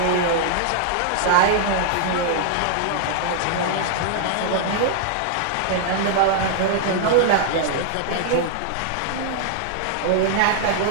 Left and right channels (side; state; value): both; different; correlation -0.01